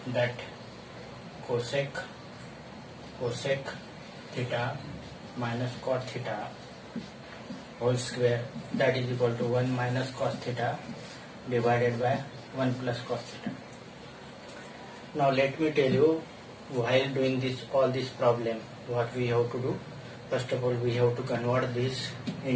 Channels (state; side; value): identical; both; correlation 1.00